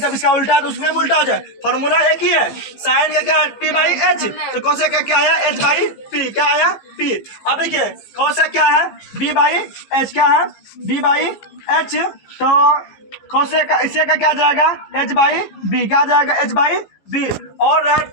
इसका उल्टा है तो उसमें उल्टा हो जाए। फॉर्मूला एक ही है, साइन का क्या है पी बाई एच, तो कोसेक का क्या आया एच बाई पी, क्या आया पी। अब देखिए कोसेक क्या है बी बाई एच, क्या है बी बाई एच, तो कोसेक का इससे का क्या जाएगा एच बाई बी, क्या जाएगा एच बाई बी। और रहा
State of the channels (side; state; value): right; late; 15 ms